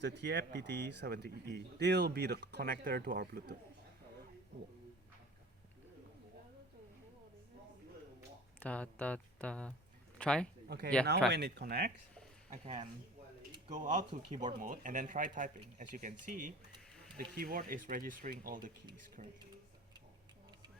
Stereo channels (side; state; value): both; normal; correlation 0.41